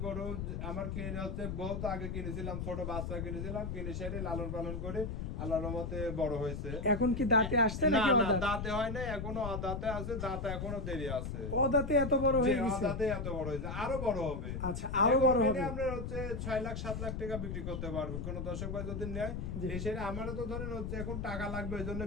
গরু আমার কিনে হচ্ছে বহুত আগে কিনেছিলাম, ছোট বাচ্চা কিনেছিলাম, কিনে সেরে লালন পালন করে আল্লাহর রহমতে বড় হয়েছে। এখন কি দাঁতে আসছে না নাকি না, অদাঁত? দাঁতে হয় নাই, এখনো দাঁতে আছে, দাঁতে এখনো দেরি আছে। অদাঁতে এত বড় যে হয়ে গেছে? দাঁতে এত বড় হয়েছে, আরো বড় হবে। আচ্ছা, আরো বড় হবে। আপনার হচ্ছে 6 লাখ 7 লাখ টাকা বিক্রি করতে পারবে কোন দর্শক ভাই যদি নেয়। জি। এসে আমারও তো ধরেন হচ্ছে এখন টাকা লাগবে, এই জন্য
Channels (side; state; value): left; noise; rumble, 4 dB below the sound